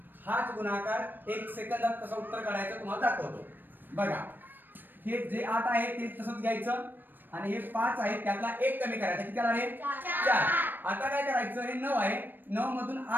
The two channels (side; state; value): left; late; 0.093 ms